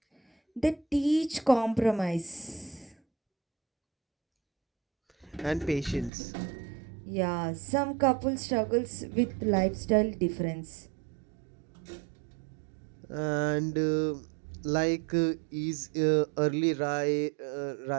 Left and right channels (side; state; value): left; drops out; at 6.1 s